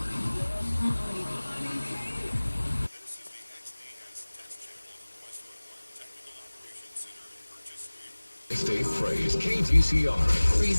State Phrase KTCR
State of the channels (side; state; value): both; inverted; correlation -1.00